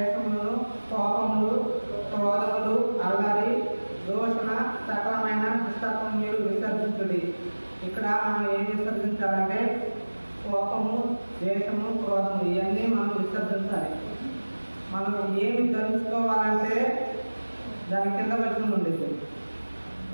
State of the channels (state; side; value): inverted; both; correlation -1.00